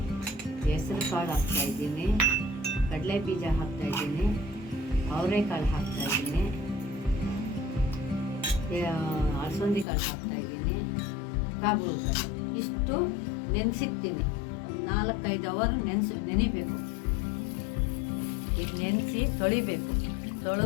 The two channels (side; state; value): right; drops out; at 9.9 s